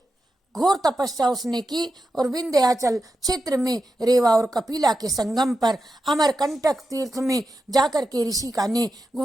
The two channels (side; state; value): both; normal; correlation 0.89